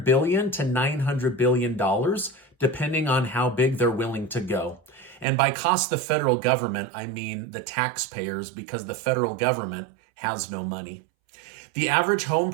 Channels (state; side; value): drops out; left; at 5.2 s